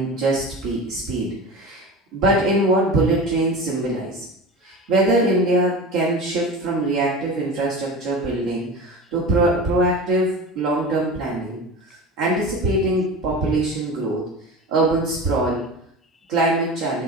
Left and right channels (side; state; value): both; normal; correlation 0.31